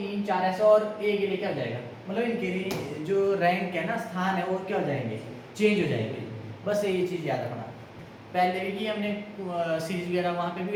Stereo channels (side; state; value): both; identical; correlation 1.00